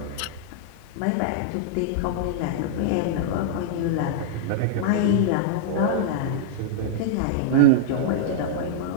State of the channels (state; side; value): different; both; correlation -0.02